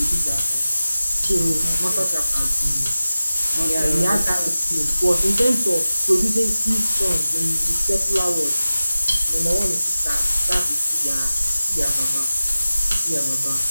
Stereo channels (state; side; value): inverted; both; correlation -0.96